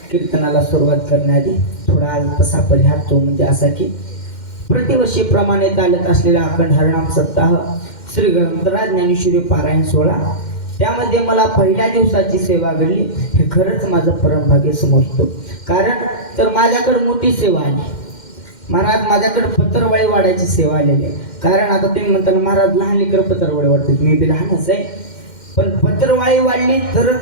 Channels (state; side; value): late; right; 2.1 ms